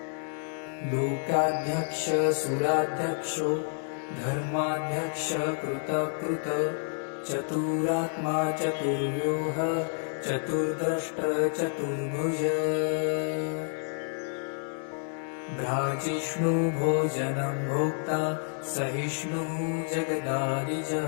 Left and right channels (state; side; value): silent; right; digital silence